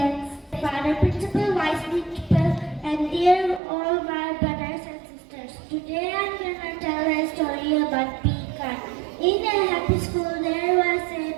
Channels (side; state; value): left; drops out; at 3.6 s